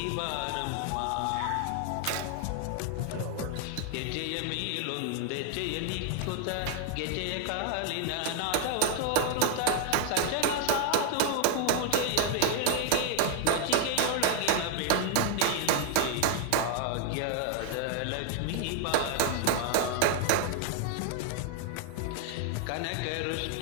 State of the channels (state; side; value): different; both; correlation 0.00